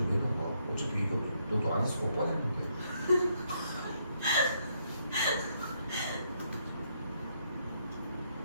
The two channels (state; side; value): inverted; both; correlation -0.75